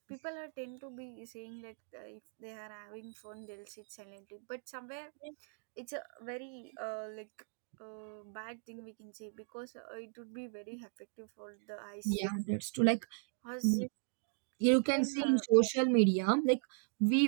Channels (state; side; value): silent; left; 53 dB below the other